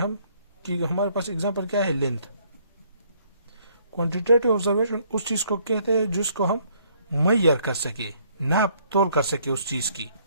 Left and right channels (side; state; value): both; inverted; correlation -0.65